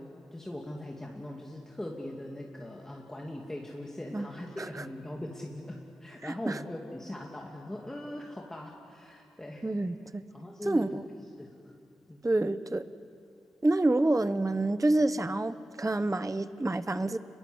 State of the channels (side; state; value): both; normal; correlation 0.96